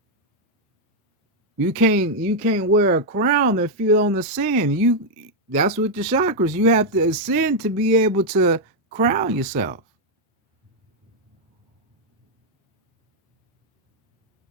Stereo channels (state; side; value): normal; both; correlation -0.02